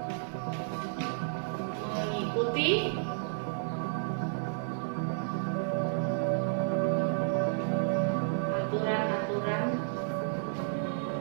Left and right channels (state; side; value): silent; left; 57 dB below the other